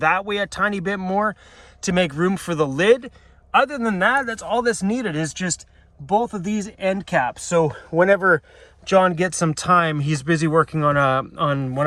way a tiny bit more to make room for the lid. Other than that, that's all that's needed, is just both of these end caps. So whenever John gets some time, he's busy working on one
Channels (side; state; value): both; identical; correlation 1.00